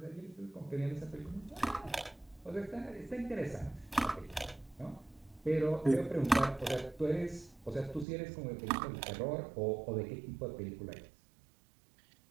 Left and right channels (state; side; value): drops out; left; at 8.1 s